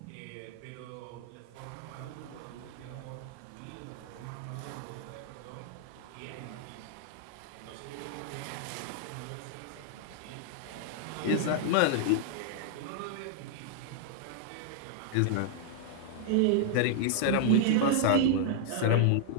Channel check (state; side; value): different; both; correlation -0.01